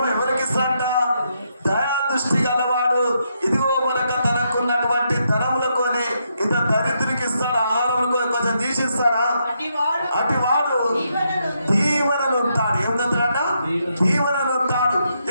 ఇస్తాడంట? దయా దృష్టి గలవాడు ఇదిగో మనక తనకున్నటువంటి ధనములకొని ఇంత దరిద్రునికి ఇస్తాడు. ఆహారంలో కొంచెం తీసిస్తాడా? అటు వాడు దీవెనలు ఉంటాడు. ఏమంటాడంట? దీవెనలు ఉంటాడు.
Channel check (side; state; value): both; inverted; correlation -0.79